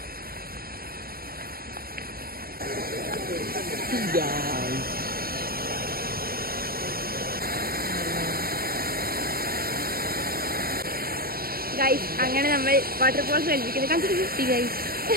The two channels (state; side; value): late; left; 0.44 ms